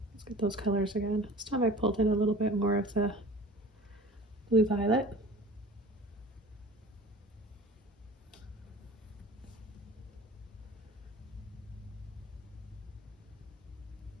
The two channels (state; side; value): normal; both; correlation 0.42